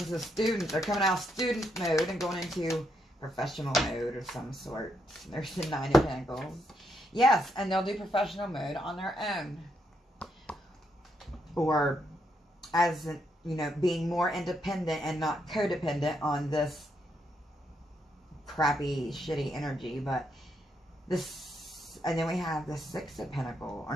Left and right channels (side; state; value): both; normal; correlation 0.78